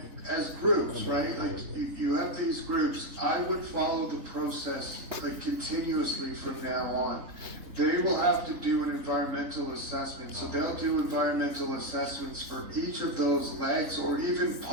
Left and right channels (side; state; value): left; late; 3.7 ms